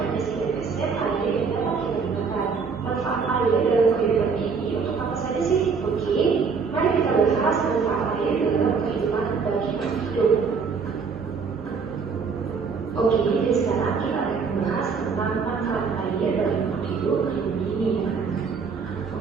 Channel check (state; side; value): quieter; left; 5.4 dB